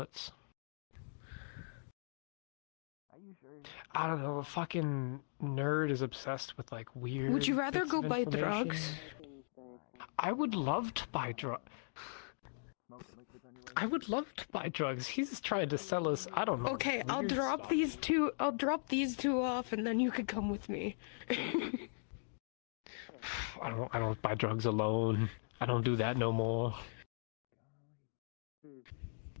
Are you sure? I don't know, a fucking nerd is obsessed with like weird. Would you rather bits go of buy information. drugs? I would love to buy drugs. I would love to buy drugs. He's trying to sell us. I don't know. Okay, I'll weird drop stuff. these two. I'll drop these two off, and then you can come with me. I don't buy drugs alone. I don't do that no more.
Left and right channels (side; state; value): right; silent; digital silence